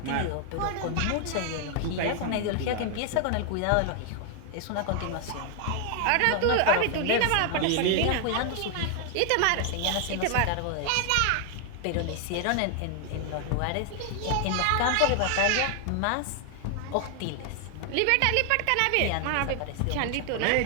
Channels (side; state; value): both; different; correlation 0.00